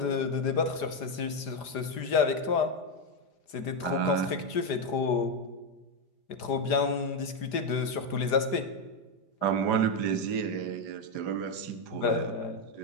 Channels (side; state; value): right; late; 5.0 ms